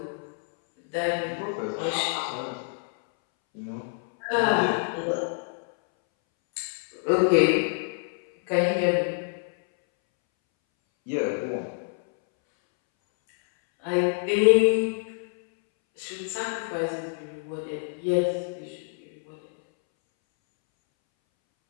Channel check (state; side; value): silent; right; 60 dB below the other